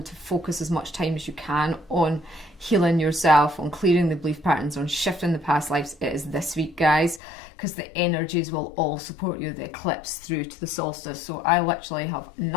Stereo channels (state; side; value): drops out; right; at 7.2 s